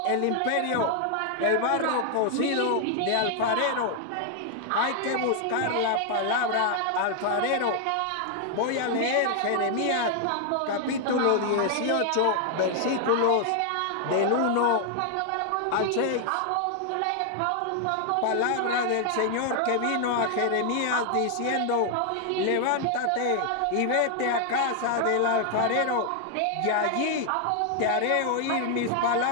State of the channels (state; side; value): different; both; correlation 0.00